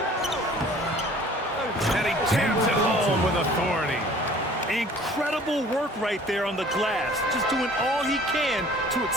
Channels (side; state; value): both; normal; correlation 0.50